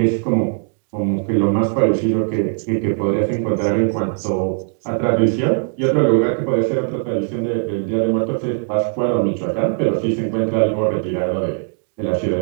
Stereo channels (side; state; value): left; silent; digital silence